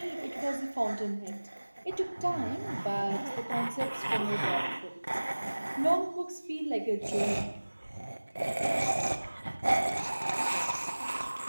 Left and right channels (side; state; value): both; inverted; correlation -1.00